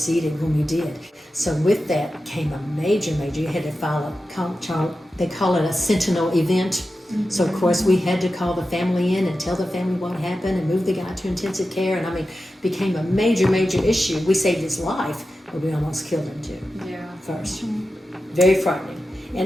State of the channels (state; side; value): normal; both; correlation 0.92